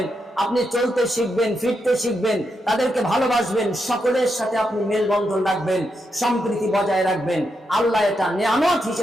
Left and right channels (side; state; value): both; normal; correlation 0.83